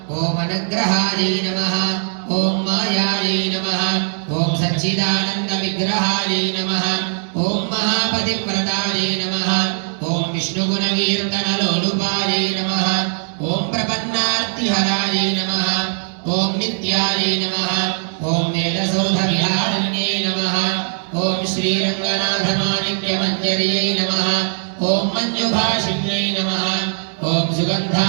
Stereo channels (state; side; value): silent; left; 66 dB below the other